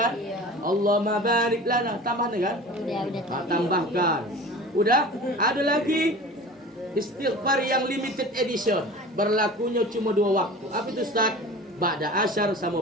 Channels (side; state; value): both; normal; correlation 0.38